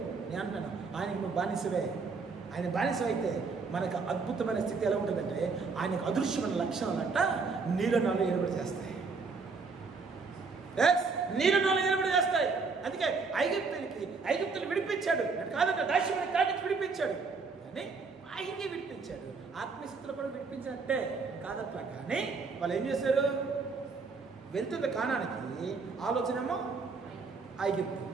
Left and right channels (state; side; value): quieter; left; 4.6 dB